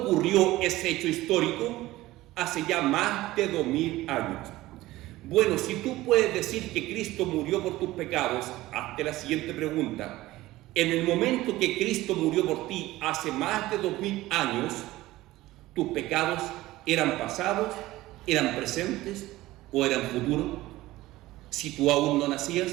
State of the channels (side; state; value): left; quieter; 17.3 dB